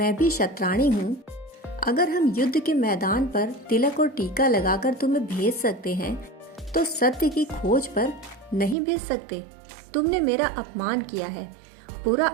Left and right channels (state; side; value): drops out; left; at 8.8 s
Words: भी शतरानी हूँ। अगर हम युद्ध के मैदान पर तिलक और टीका लगाकर तुम्हें भेज सकते हैं, तो सत्य की खोज पर नहीं भेज सकते। तुमने मेरा अपमान किया है, बुरा